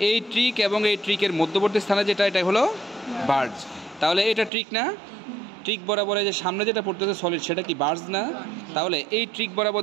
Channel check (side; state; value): left; drops out; at 4.5 s